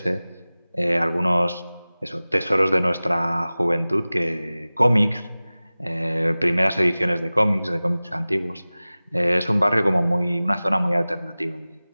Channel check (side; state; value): both; inverted; correlation -0.98